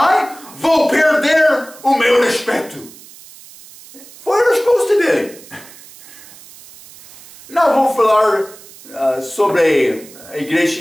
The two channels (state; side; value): noise; right; hiss, 20 dB below the sound